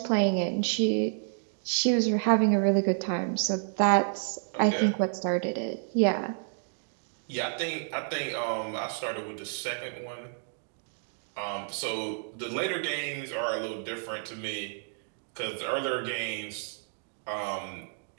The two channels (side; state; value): left; silent; digital silence